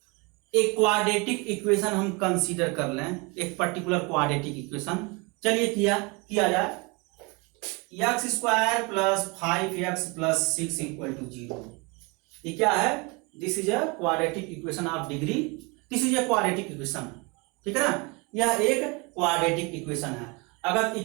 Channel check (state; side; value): quieter; left; 28.5 dB